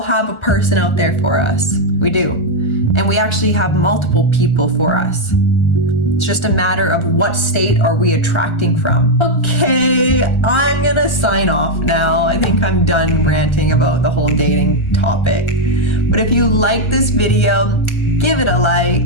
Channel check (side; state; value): right; late; 1.4 ms